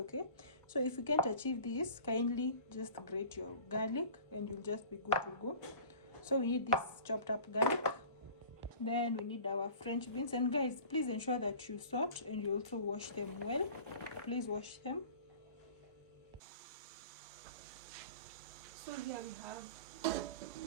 so if you can't achieve this, kindly just grate your garlic and you'll just be good to go. So we need this chopped up garlic, then we need our French beans. And guys, please ensure that you salt and you also wash them well. Please wash them. So here we have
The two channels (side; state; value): both; inverted; correlation -0.43